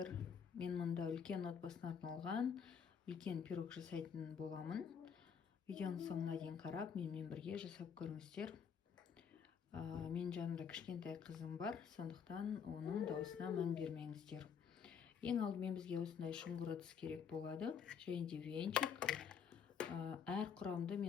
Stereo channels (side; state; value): right; quieter; 7.1 dB